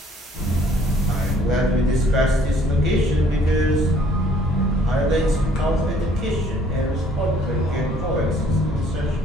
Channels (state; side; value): normal; both; correlation 0.60